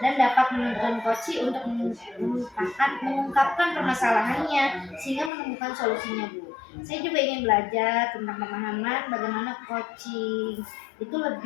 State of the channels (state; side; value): drops out; right; at 5.3 s